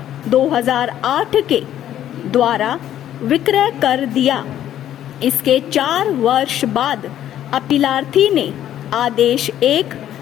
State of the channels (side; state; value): right; quieter; 11.5 dB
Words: के द्वारा विक्रय कर दिया। इसके 4 वर्ष बाद अपीलार्थी ने आदेश 1